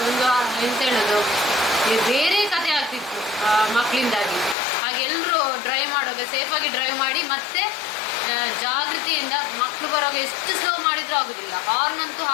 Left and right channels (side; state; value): right; drops out; at 4.5 s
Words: ಒಂದು ಎಂತ ಹೇಳೋದು, ಬೇರೆ ಕತೆ ಆಗ್ತಿತ್ತು ಮಕ್ಕಳಿಂದಾಗಿ. ಹಾಗೆ ಎಲ್ಲರೂ ಡ್ರೈವ್ ಮಾಡುವಾಗ ಸೇಫಾಗಿ ಡ್ರೈವ್ ಮಾಡಿ, ಮತ್ತೆ ಜಾಗೃತಿಯಿಂದ ಮಕ್ಕಳು ಬರುವಾಗ ಎಷ್ಟು ಸ್ಲೋ ಮಾಡಿದ್ರೂ ಆಗುದಿಲ್ಲ. ಹಾರ್ನ್ ಅಂತೂ